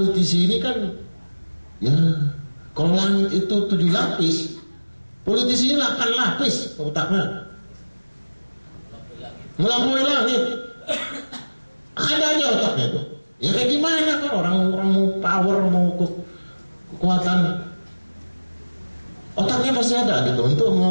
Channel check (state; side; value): inverted; both; correlation -1.00